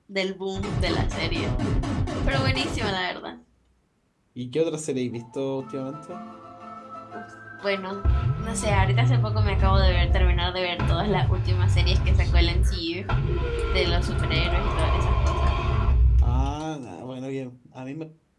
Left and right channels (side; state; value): both; identical; correlation 1.00